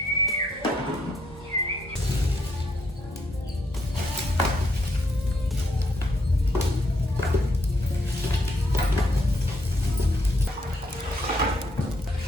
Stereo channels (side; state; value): both; normal; correlation 0.74